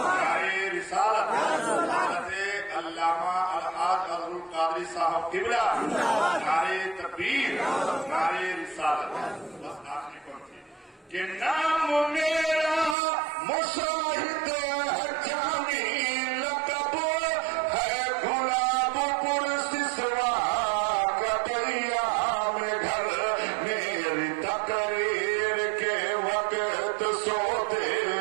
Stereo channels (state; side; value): drops out; left; at 13.0 s